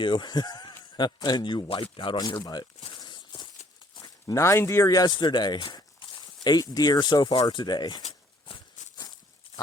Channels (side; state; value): both; normal; correlation 0.62